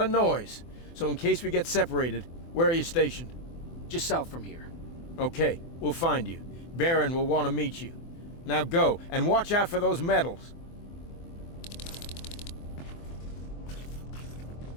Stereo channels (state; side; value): late; right; 24 ms